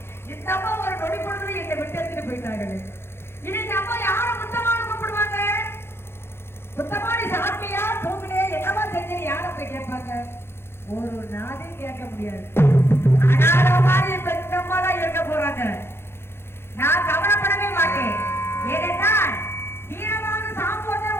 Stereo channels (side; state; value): right; late; 0.12 ms